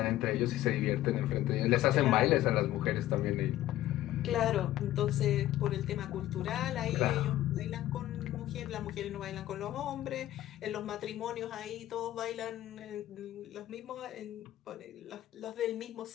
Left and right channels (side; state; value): right; quieter; 14.2 dB